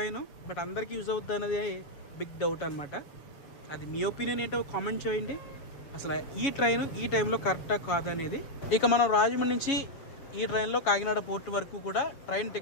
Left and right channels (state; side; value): late; right; 7.5 ms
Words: బట్ అందరికీ యూజ్ అవుతుంది అనేది బిగ్ డౌట్ అనమాట. అది మీ ఒపీనియన్ ఏంటో కామెంట్ చేయండి. అసలు ఈ ట్రైన్ ఈ టైంలో కరెక్టా కాదనేది. ఇక మనం రాజమండ్రి నుంచి ఈ ట్రైన్లో కాకినాడ పోర్ట్ వరకు కూడా ట్రైన్